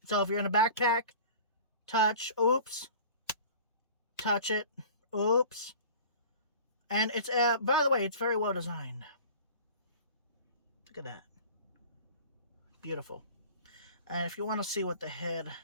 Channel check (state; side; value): inverted; both; correlation -0.42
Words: So if you're in a backpack, touch, oops, touch it. Oops. And it's, by the way, it's very well designed. Look at that. Beautiful. And if you want to see what the head